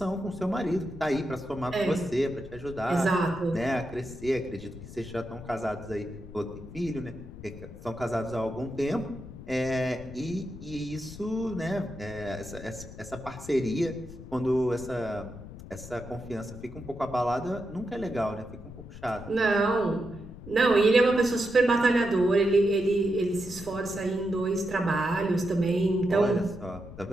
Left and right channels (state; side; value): noise; left; rumble, 14 dB below the sound